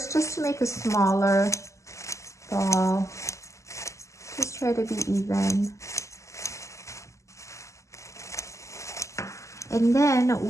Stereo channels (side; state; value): right; late; 0.15 ms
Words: make a smaller ball. Just try to be even. And then